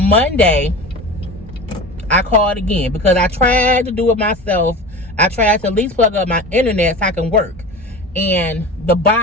Monday, I called again because I tried to do it myself. I tried to at least plug up my internet so I can work. And the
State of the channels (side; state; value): both; normal; correlation 0.33